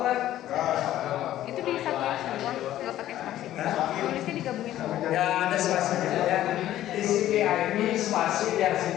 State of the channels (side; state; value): right; quieter; 13.2 dB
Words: kan? Itu disatuin semua, nggak pakai spasi. Tulisnya digabungin semua. Ya ada spasinya ya. TCP IP spasi